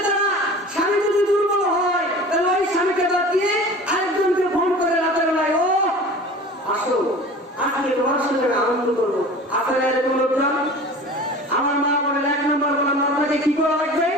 যারা স্বামী যদি দুর্বল হয় তাহলে ওই স্বামীকে বাদ দিয়ে আরেকজনকে ফোন করে রাতের বেলায়, ও আসো আজকে তোমার সঙ্গে আনন্দ করবো, আসলে এরকম লোকজন। আমার মা বলেন 1 নম্বর বললাম আপনাকে কি করা লাগবে,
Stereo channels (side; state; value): both; normal; correlation 0.39